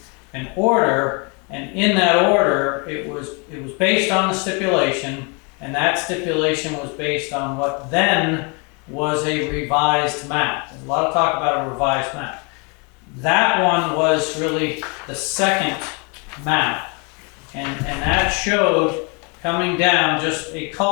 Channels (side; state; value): right; quieter; 33.2 dB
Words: an order, and in that order, it was based on the stipulation, and that stipulation was based on what then was a revised map. There's a lot of talk about a revised map. That one was really the second map, and that showed coming down just a